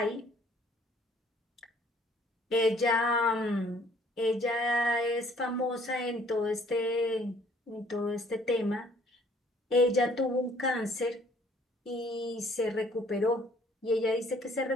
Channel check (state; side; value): normal; both; correlation 0.59